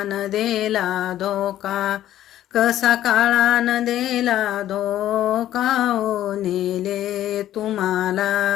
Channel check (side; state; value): right; quieter; 12.7 dB